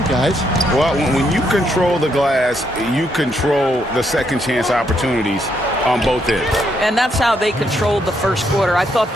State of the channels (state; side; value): normal; both; correlation 0.76